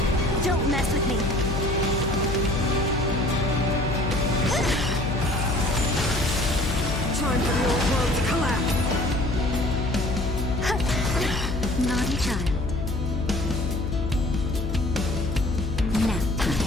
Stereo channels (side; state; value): left; noise; hum, 3 dB below the sound